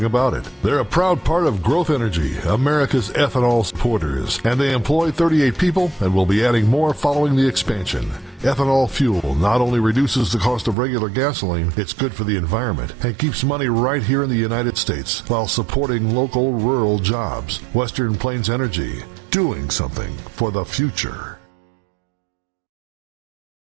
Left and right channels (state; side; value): drops out; left; at 10.8 s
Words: about it. They're a proud part of Growth Energy, America's ethanol supporters, and they employ 38 people and will be adding more following the expansion. Ethanol fuel not only reduces the cost of regular gasoline, it's good for the environment and keeps money right here in the United States while supporting local rural jobs. Western Plains Energy, doing something for the future.